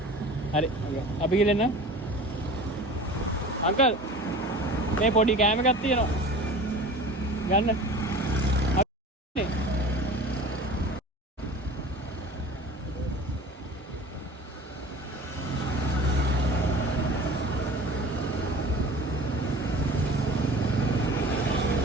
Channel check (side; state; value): both; normal; correlation 0.40